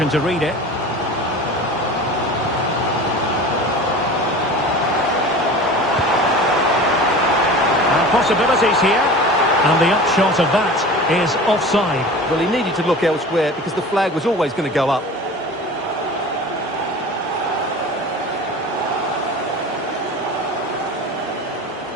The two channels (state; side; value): normal; both; correlation 0.36